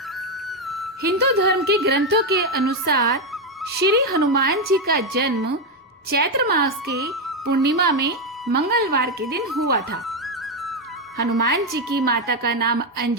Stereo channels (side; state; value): both; normal; correlation 0.06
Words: हिंदू धर्म के ग्रंथों के अनुसार श्री हनुमान जी का जन्म चैत्र मास के पूर्णिमा में मंगलवार के दिन हुआ था। हनुमान जी की माता का नाम